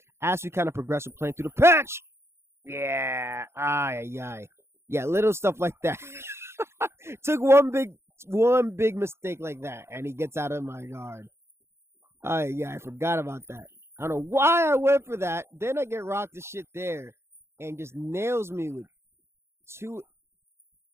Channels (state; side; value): late; left; 0.12 ms